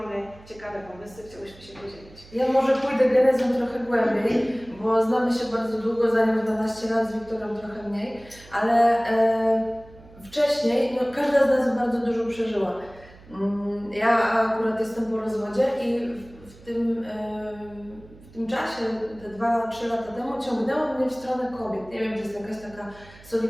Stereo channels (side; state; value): right; noise; hum, 22 dB below the sound